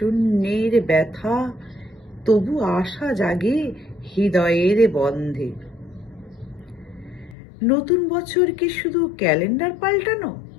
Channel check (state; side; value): drops out; right; at 7.4 s